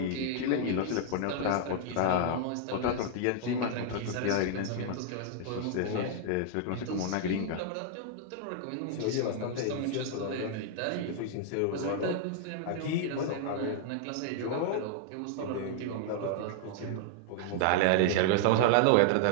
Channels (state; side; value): different; both; correlation -0.01